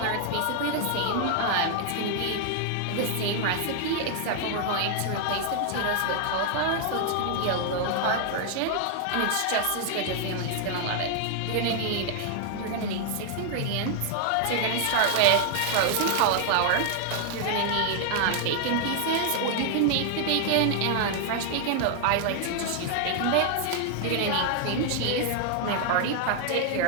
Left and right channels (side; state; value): both; different; correlation 0.00